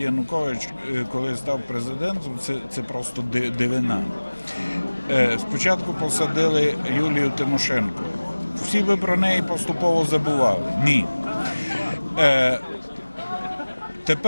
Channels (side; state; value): both; inverted; correlation -1.00